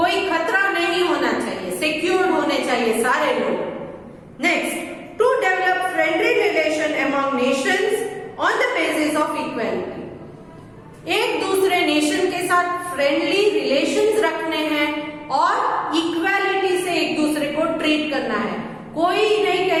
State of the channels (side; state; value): both; identical; correlation 1.00